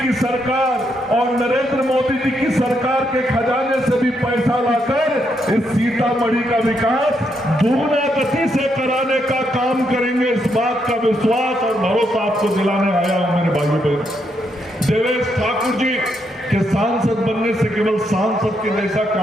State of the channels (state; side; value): normal; both; correlation 0.78